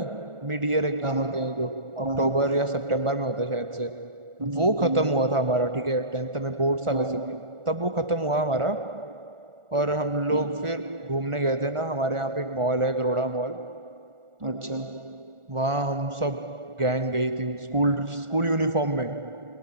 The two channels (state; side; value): late; left; 1.4 ms